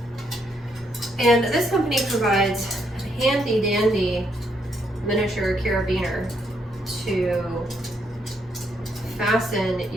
And this company provides a handy dandy miniature carabiner to fasten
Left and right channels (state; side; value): normal; both; correlation 0.75